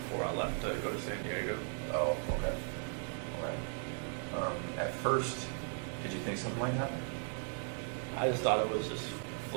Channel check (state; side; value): silent; left; 53 dB below the other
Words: I left to go to San Diego. Oh, okay. All right. At first, did you think something might happen? I just thought it was just